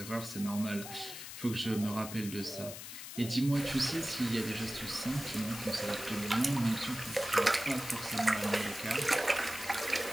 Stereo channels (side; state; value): left; noise; hiss, 10 dB below the sound